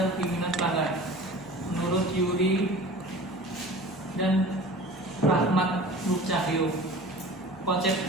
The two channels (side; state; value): left; noise; hum, 24 dB below the sound